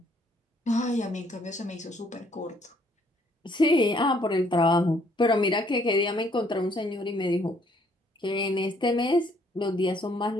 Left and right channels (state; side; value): normal; both; correlation 0.65